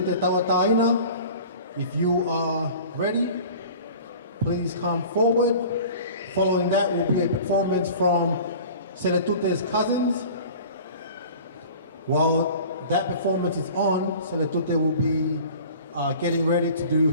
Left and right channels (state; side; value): inverted; both; correlation -0.42